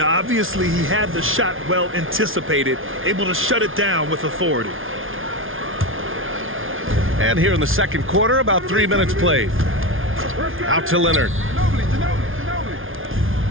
obviously he had the shot well anticipated, able to shut it down with authority. And here in the second quarter, about 3 minutes played. Out to Leonard.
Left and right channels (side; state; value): left; late; 0.59 ms